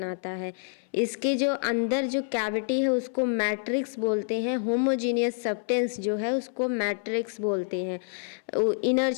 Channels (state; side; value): silent; right; 60 dB below the other